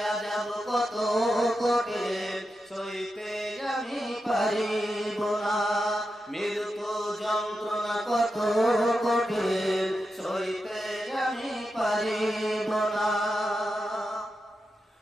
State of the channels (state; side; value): normal; both; correlation 0.88